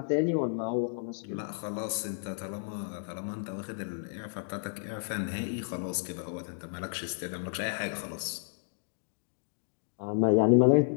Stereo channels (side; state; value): right; silent; digital silence